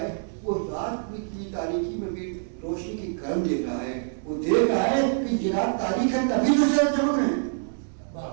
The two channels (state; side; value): silent; left; digital silence